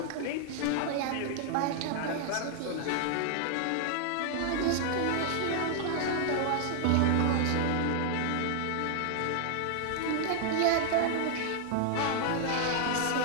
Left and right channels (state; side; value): different; both; correlation 0.00